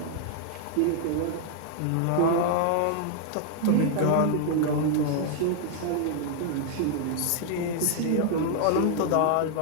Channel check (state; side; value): different; both; correlation 0.00